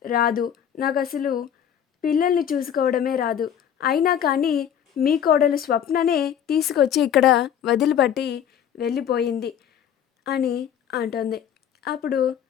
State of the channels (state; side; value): quieter; right; 9.2 dB